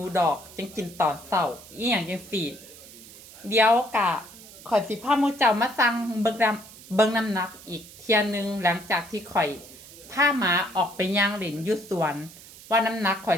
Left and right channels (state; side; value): noise; right; hiss, 19 dB below the sound